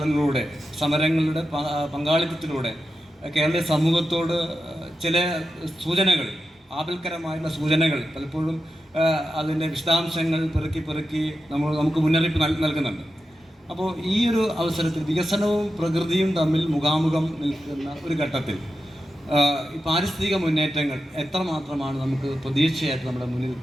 സമരങ്ങളുടെ പങ്കാളിത്തത്തിലൂടെ കേരളീയ സമൂഹത്തോട് ചില സൂചനകൾ, ആപൽക്കരമായുള്ള സൂചനകൾ പലപ്പോഴും അതിൻ്റെ വിശദാംശങ്ങൾ പെറുക്കി നമുക്ക് മുന്നറിയിപ്പ് നൽകുന്നുണ്ട്. അപ്പോൾ ഈ ഒരു അവസരത്തിൽ വികസനവും പ്രകൃതിയും തമ്മിൽ മുഖാമുഖം നിൽക്കുന്ന ഒരു ഘട്ടത്തിൽ ഈ പാരിസ്ഥിതിക മുന്നേറ്റങ്ങൾ എത്രമാത്രമാണ് നമുക്ക് പ്രതീക്ഷയായിട്ട് നമ്മുടെ മുന്നിൽ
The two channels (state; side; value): normal; both; correlation 0.90